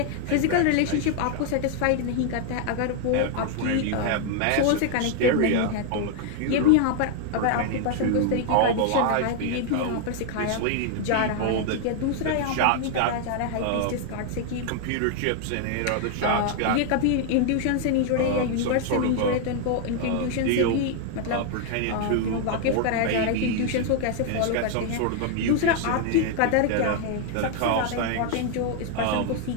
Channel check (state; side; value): different; both; correlation 0.00